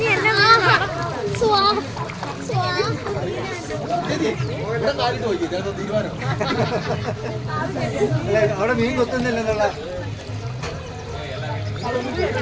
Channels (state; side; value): identical; both; correlation 1.00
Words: അവിടെ മീൻ കൊത്തുന്നില്ലെന്നുള്ള